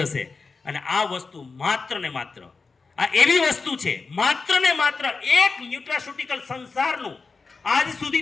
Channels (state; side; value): quieter; right; 4.4 dB